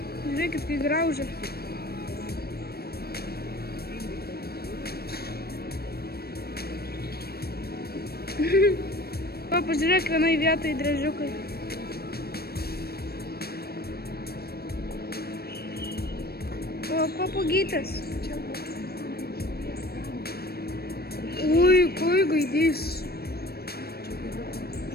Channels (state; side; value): late; right; 0.46 ms